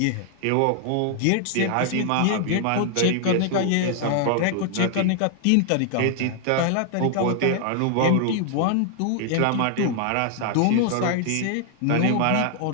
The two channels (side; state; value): both; different; correlation 0.00